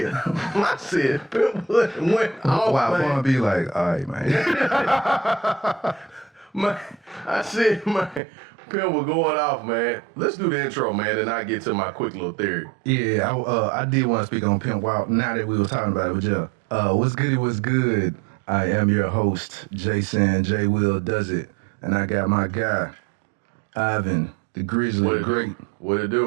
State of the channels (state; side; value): drops out; left; at 8.2 s